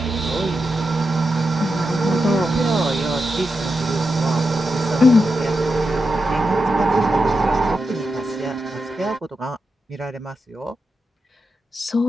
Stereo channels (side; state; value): both; normal; correlation 0.88